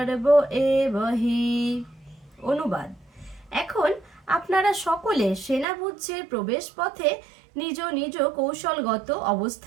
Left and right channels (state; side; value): drops out; left; at 5.7 s